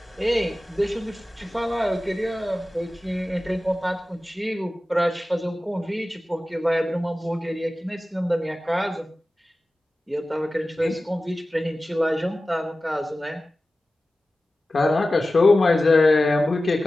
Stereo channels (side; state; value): both; normal; correlation 0.95